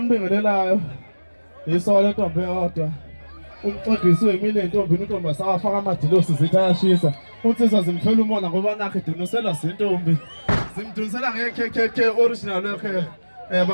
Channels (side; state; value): both; inverted; correlation -1.00